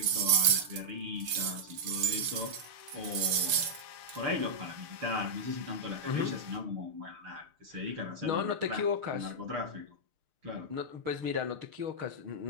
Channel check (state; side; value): late; left; 6.6 ms